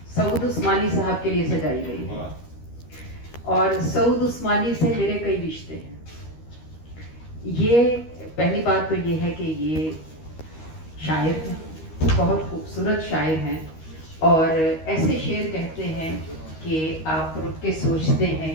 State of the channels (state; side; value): late; right; 13 ms